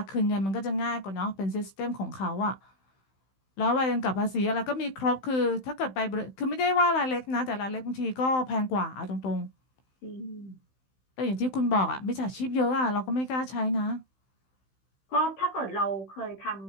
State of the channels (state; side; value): late; right; 16 ms